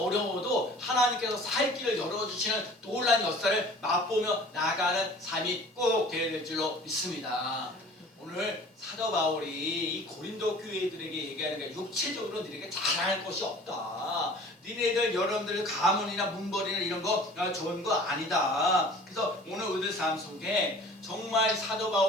어려워도 하나님께서 살 길을 열어주시는 놀라운 역사를 맛보며 나가는 삶이 꼭 되어야 될 줄로 믿습니다. 오늘 사도 바울이 이 고린도 교회들에게 얘기하는 게 육체적으로 너희에게 잘할 것이 없다. 니네들 여러분들 가문이나 문벌이나 이런 거 좋은 거 아니다. 그래서 오늘 우리들 삶 속에 정말 사도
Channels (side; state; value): both; normal; correlation 0.46